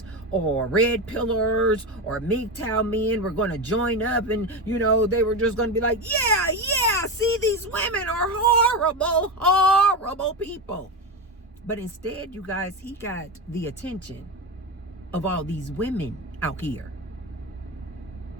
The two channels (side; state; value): both; normal; correlation 0.18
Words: or red pillars or MGTOW men were going to join up and, you know, they were just going to be like, yeah, see, these women are horrible, horrible people. But instead, you guys, he got the attention of all these women out here.